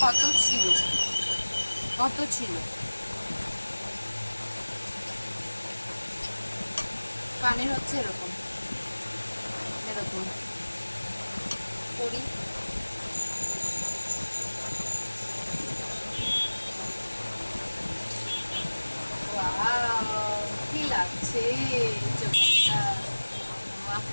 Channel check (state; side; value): inverted; both; correlation -1.00